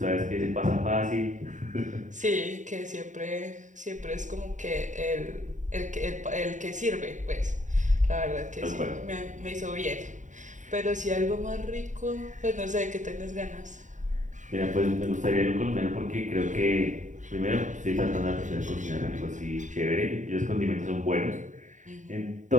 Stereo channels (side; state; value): left; late; 0.36 ms